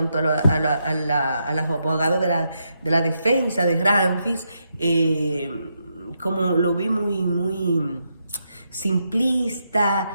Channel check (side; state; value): both; inverted; correlation -0.82